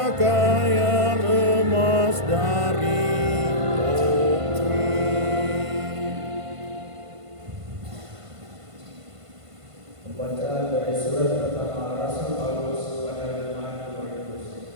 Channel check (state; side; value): late; left; 1.5 ms